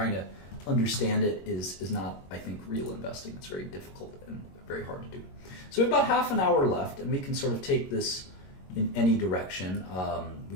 to understand it is not, I think, real investing. It's very difficult and very hard to do. So we have about half an hour left, and we can sort of take this in any direction.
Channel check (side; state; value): right; late; 22 ms